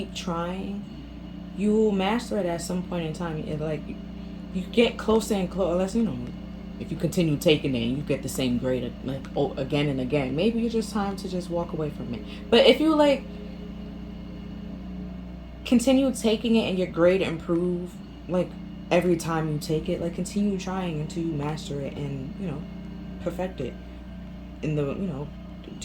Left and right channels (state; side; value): identical; both; correlation 1.00